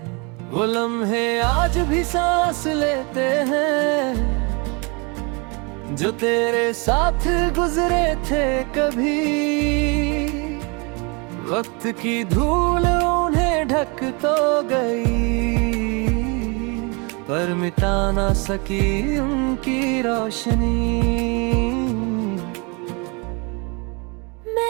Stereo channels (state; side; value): quieter; left; 31.0 dB